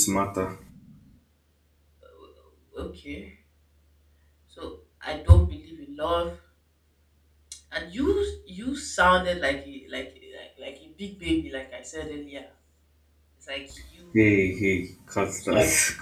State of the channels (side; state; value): both; identical; correlation 1.00